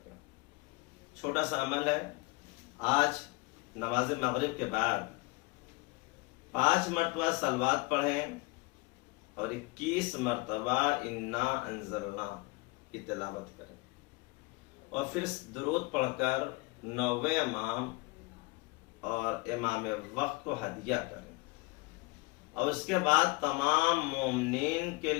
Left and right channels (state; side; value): quieter; right; 25.1 dB